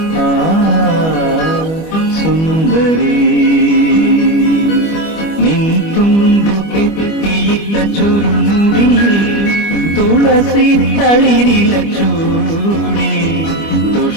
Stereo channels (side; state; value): right; late; 25 ms